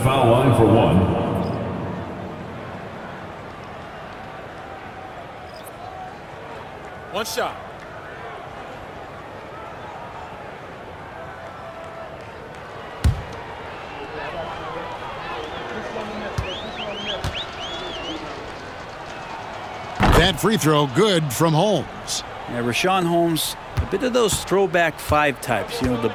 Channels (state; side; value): identical; both; correlation 1.00